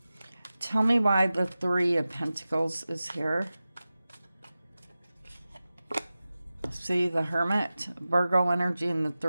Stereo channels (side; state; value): both; inverted; correlation -0.96